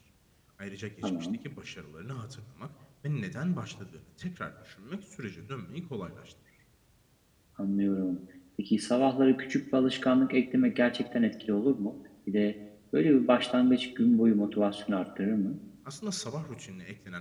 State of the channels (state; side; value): identical; both; correlation 1.00